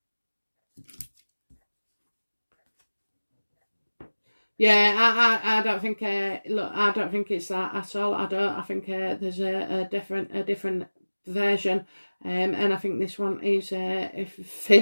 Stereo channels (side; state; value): both; inverted; correlation -1.00